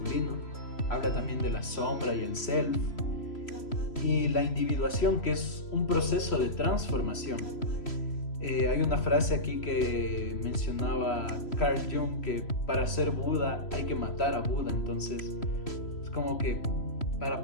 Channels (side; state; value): right; late; 3.0 ms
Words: Habla también de la sombra y el self. Y la individuación, que es un proceso de transformación. Hay una frase aquí que mencionaba Carl Jung, que para ser Buda hay que matar a Buda. Entonces es como que para